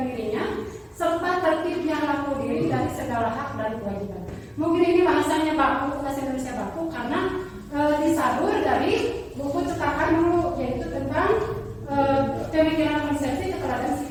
dirinya serta tertibnya laku diri dari segala hak dan kewajiban. Mungkin ini bahasanya baku, bahasa Indonesia baku karena disadur dari buku cetakan dulu, yaitu tentang pemikiran konsepsi keteladanan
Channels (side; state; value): both; identical; correlation 1.00